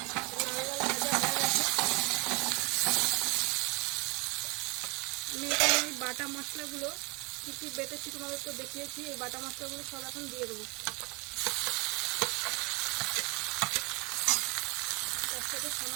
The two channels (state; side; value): quieter; left; 29.4 dB